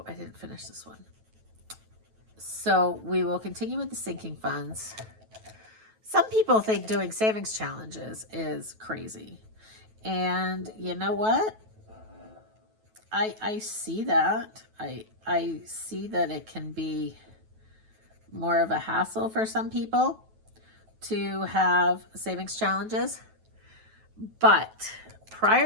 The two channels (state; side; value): late; left; 9.2 ms